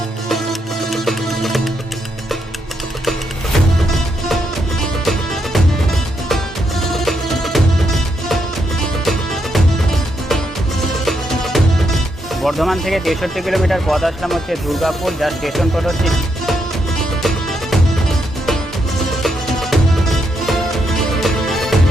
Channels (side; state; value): both; normal; correlation 0.79